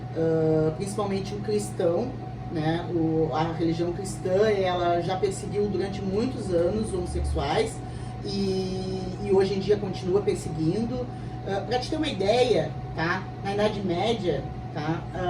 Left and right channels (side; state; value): both; identical; correlation 1.00